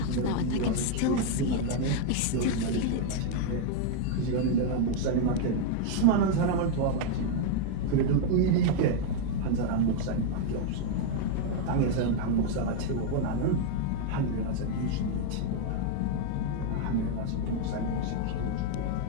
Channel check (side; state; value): both; different; correlation 0.00